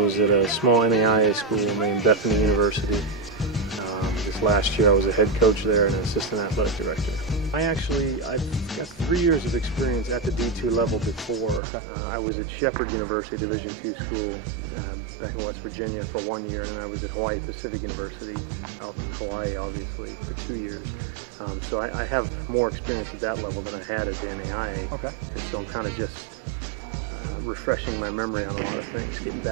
at a small NAIA school named Bethany University. This last year, I was a head coach there and an assistant athletic director. I've got 3 years of experience at the D2 level before. I was at Shepherd University, Division II school, back in West Virginia for 1 year, and I was at Hawaii Pacific University out in Hawaii, obviously, for 2 years. So I have more experience at that level than I had at the NAIA. Okay. And so I'm kind of just refreshing my memory on a lot of things, getting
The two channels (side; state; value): left; drops out; at 11.6 s